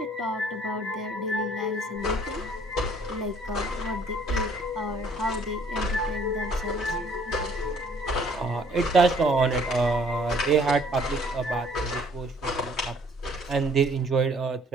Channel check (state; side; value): normal; both; correlation 0.59